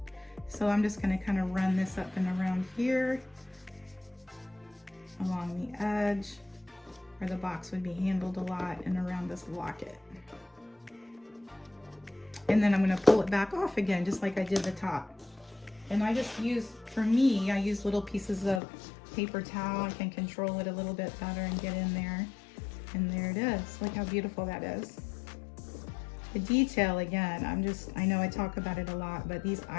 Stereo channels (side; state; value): right; drops out; at 18.6 s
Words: So I'm just going to kind of run this up and around here, along the edge. where the box would be handled a lot and around this locket. And then I'm gonna pull it back off again, just like I did the top. And I just use, for me, I use little pieces of paper towel. I can control it a little bit better and get in there. And there it is. Look how beautiful that is. The detail, again, I know I talk about it a lot, but these